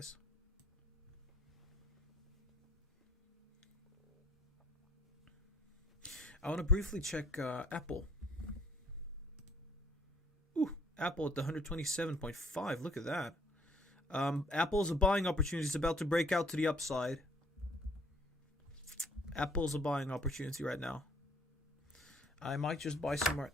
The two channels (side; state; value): both; normal; correlation 0.60